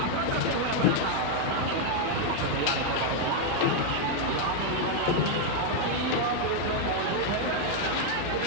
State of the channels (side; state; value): both; different; correlation 0.00